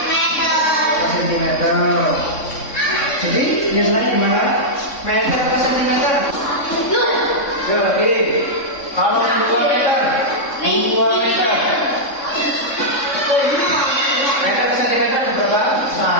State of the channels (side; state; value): right; late; 3.6 ms